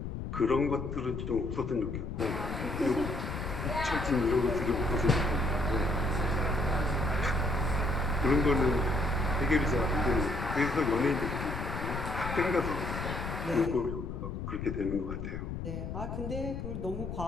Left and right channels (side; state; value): left; noise; rumble, 5 dB below the sound